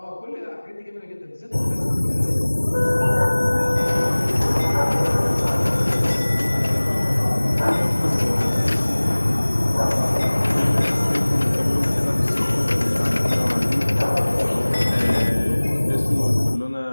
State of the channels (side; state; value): both; inverted; correlation -1.00